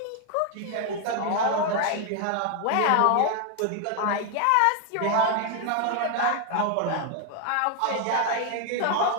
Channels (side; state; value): both; different; correlation 0.01